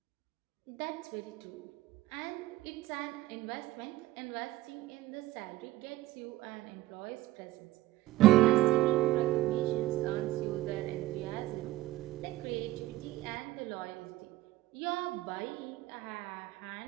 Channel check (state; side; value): quieter; left; 16.5 dB